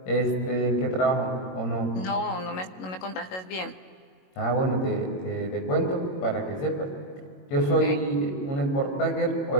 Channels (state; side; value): late; right; 22 ms